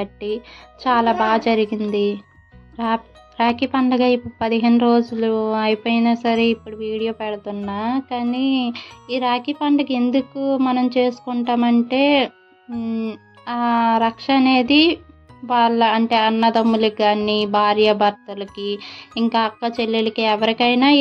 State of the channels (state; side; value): identical; both; correlation 1.00